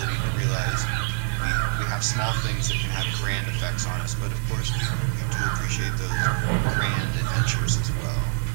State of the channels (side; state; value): left; silent; digital silence